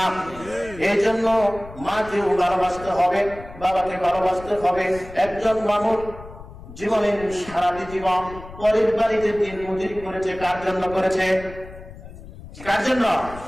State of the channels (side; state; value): left; noise; rumble, 16 dB below the sound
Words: এই জন্য মাকেও ভালোবাসতে হবে, বাবাকে ভালোবাসতে হবে। একজন মানুষ জীবনের সারাটি জীবন পরের বাড়িতে দিন মজুরি করেছে, কার জন্য করেছে? কার জন্য?